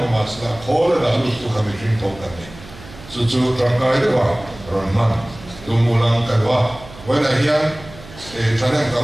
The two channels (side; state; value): right; noise; hum, 18 dB below the sound